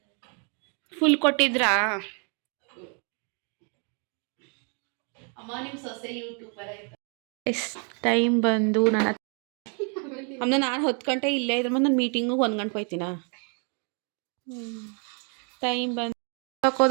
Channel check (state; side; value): quieter; left; 38.1 dB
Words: ಫುಲ್ ಕೊಟ್ಟಿದ್ರಾ? ಟೈಮ್ ಬಂದು ನಾನು 10 ಗಂಟೆ ಇಲ್ಲೇ ಇದ್ರೆ ನಾನು ಮೀಟಿಂಗು 1 ಗಂಟೆ ಹೋಯ್ತೀನ. ಟೈಮ್ ಬಂದು